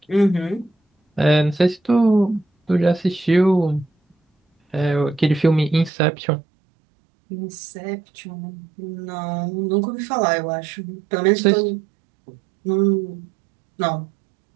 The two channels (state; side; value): drops out; left; at 5.9 s